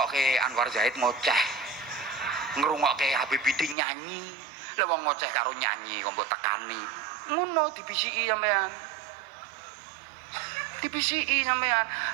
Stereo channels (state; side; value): drops out; left; at 3.8 s